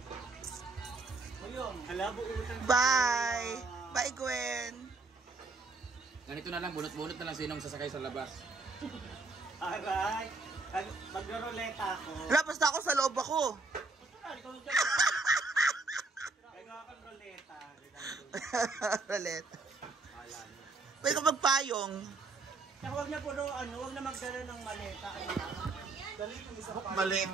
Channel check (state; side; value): quieter; left; 3.5 dB